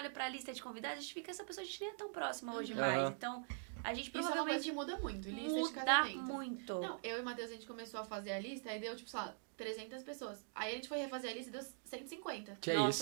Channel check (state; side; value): silent; left; digital silence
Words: pra lista de convidados, a gente fica, essa pessoa a gente nem é tão próxima hoje mais. Aham. Então, a gente Isso é uma coisa provavelmente que muda muito. Lista de muda casamento. muito. Não, eu e o Matheus, a gente começou a fazer a lista, aí deu, tipo, sei lá, 300 pessoas. Aí a gente foi refazer a lista e deu 150. Que